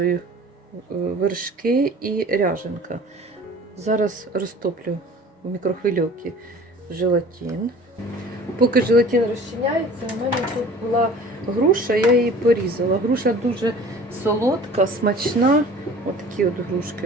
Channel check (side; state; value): both; normal; correlation 0.45